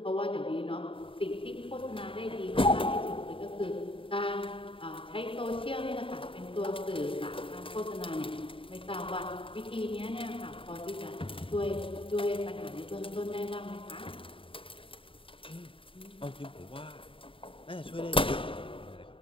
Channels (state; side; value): late; right; 0.26 ms